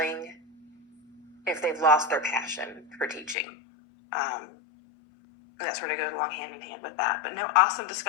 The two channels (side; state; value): right; drops out; at 3.4 s